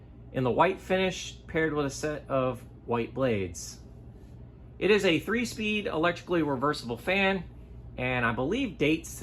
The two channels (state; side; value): identical; both; correlation 1.00